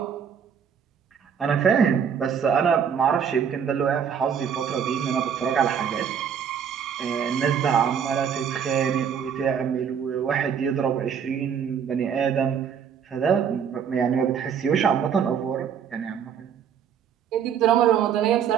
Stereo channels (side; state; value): left; quieter; 7.7 dB